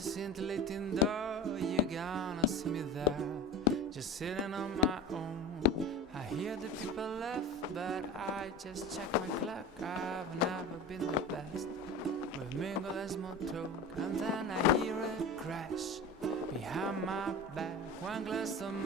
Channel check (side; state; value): both; normal; correlation 0.32